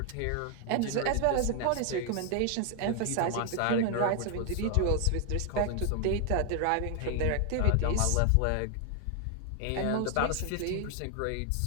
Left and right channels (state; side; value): different; both; correlation 0.00